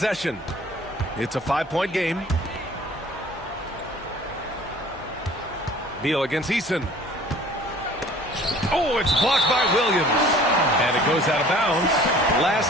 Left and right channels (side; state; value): both; normal; correlation 0.49